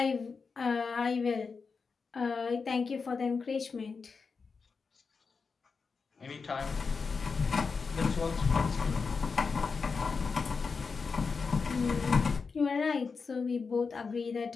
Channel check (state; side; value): quieter; right; 5.0 dB